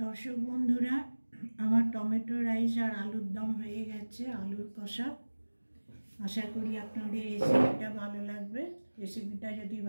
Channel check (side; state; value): both; inverted; correlation -1.00